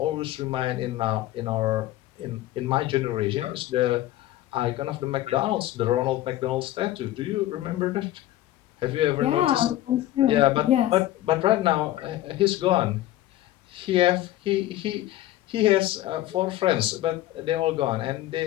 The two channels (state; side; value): quieter; right; 14.6 dB